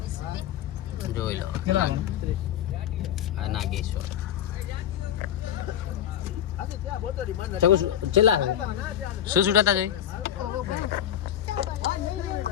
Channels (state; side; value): quieter; right; 10.6 dB